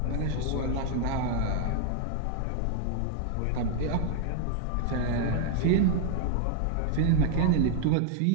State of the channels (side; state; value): both; different; correlation 0.00